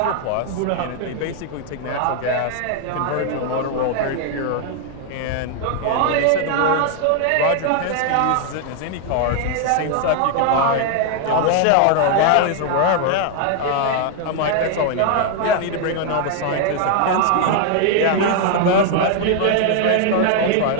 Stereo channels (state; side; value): different; both; correlation 0.00